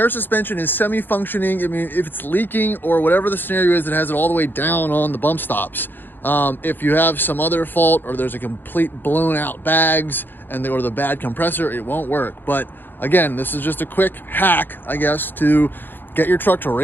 suspension is semi-functioning. I mean, if it's leaking or whatever the scenario is that has it all the way down on the bump stops. If you have some other fault or there's a complete blown out bags or the bad compressor, it won't work. But again, this is just a quick hack, I guess, to get your truck to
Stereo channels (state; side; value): late; right; 0.094 ms